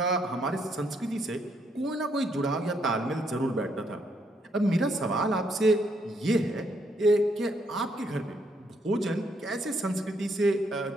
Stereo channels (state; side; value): normal; both; correlation 0.73